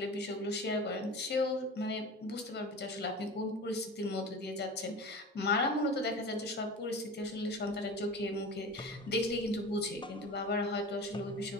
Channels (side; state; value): both; normal; correlation 0.34